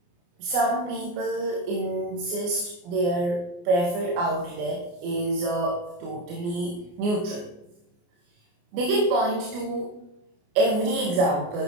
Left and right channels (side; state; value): left; late; 29 ms